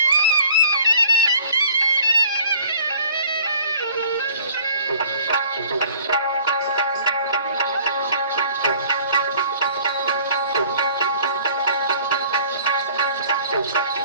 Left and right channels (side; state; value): both; inverted; correlation -0.54